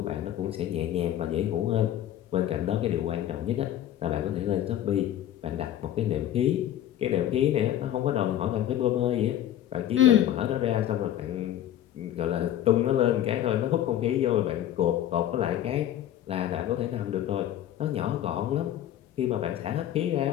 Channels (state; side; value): quieter; right; 11.8 dB